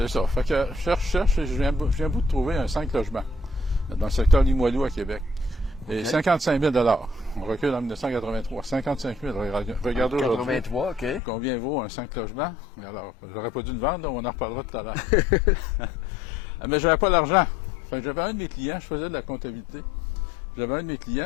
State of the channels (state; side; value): drops out; right; at 11.2 s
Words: ça. Fait que cherche, et je viens bout de trouver un 5 logements dans le secteur Limoilou à Québec. Et 55 000 $. On recule en 1983. 55 000 Regardez aujourd'hui. 83, OK. Combien vaut un 5 logements? Alors, j'aurais pas dû le vendre, on en reparlera tout à l'heure. Mais j'avais pas l'argent. Fait que j'avais un de mes clients, je faisais de la comptabilité. J'avais un de mes